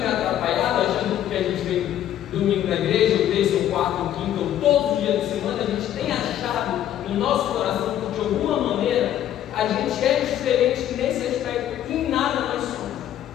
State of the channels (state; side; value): quieter; right; 11.5 dB